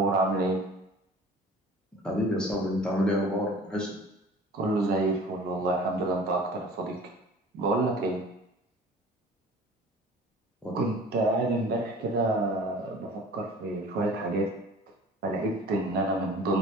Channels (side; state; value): both; normal; correlation 0.45